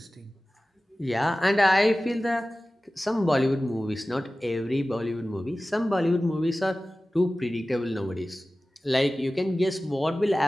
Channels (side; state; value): both; normal; correlation 0.96